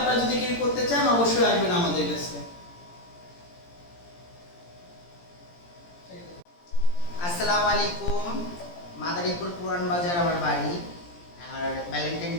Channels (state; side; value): late; right; 17 ms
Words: যদি কেউ করতে চান অবশ্যই আসবেন আমাদের কাছে। আসসালামু আলাইকুম। মাদারীপুর পুরান বাজার আমার বাড়ি। আর ভ্যালেন্টাইন